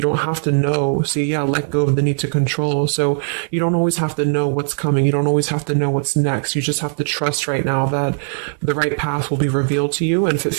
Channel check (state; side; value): silent; left; 67 dB below the other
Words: don't have to know. So yeah, let go of the need to control. So you don't always have to know what's coming. You don't always have to know what's next. You just have to trust right now that the right path will be revealed to you. And if it